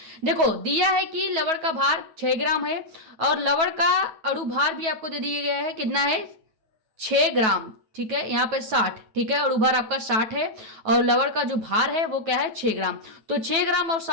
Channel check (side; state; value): left; late; 9.3 ms